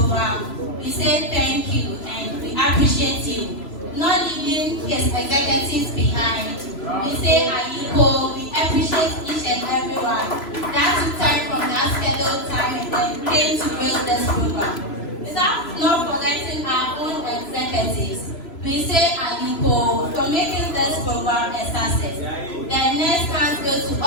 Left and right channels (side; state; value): right; late; 3.0 ms